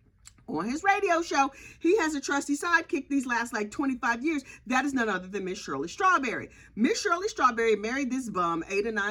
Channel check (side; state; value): both; identical; correlation 1.00